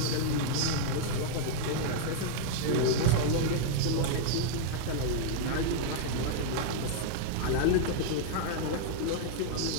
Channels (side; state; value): both; different; correlation -0.01